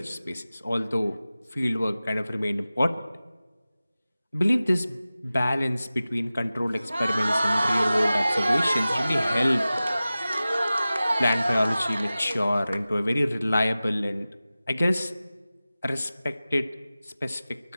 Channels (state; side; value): inverted; both; correlation -0.96